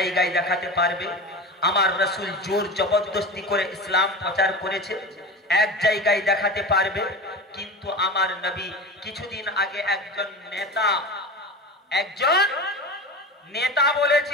দেখাতে পারবে আমার রাসূল জোর জবরদস্তি করে ইসলাম প্রচার করেছে? এক জায়গায় দেখাতে পারবে? কিন্তু আমার নবী কিছুদিন আগে একজন নেতা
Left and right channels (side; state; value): both; normal; correlation 0.29